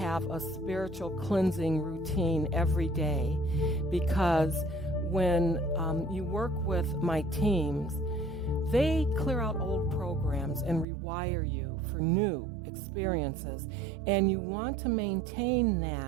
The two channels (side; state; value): left; drops out; at 10.9 s